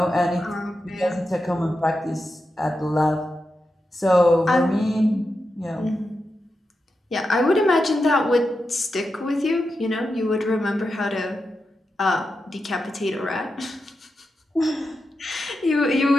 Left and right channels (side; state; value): both; normal; correlation 0.88